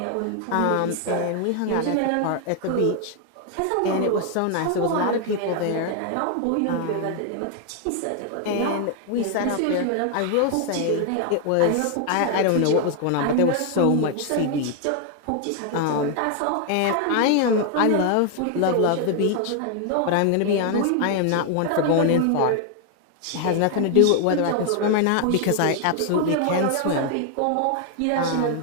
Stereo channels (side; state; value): both; different; correlation 0.00